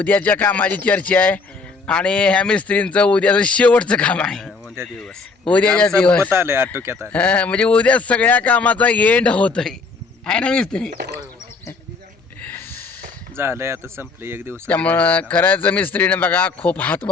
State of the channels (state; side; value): quieter; right; 4.2 dB